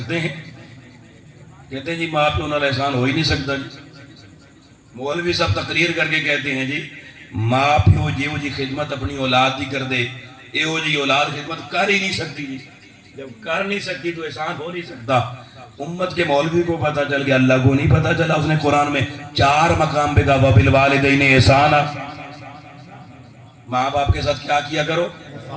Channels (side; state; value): both; identical; correlation 1.00